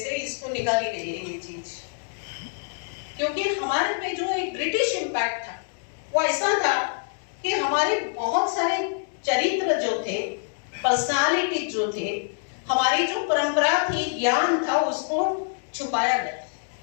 इसको निकाली गई है ये चीज, क्योंकि हमारे पे जो एक ब्रिटिश इम्पैक्ट था वो ऐसा था कि हमारे बहुत सारे चरित्र जो थे, पर्सनालिटी जो थे, हमारी जो परंपरा थी, ज्ञान था, उसको छुपाया गया।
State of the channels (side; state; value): right; silent; 61 dB below the other